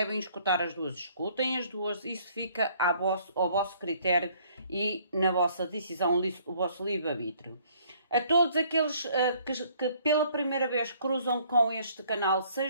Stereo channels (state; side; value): inverted; both; correlation -0.61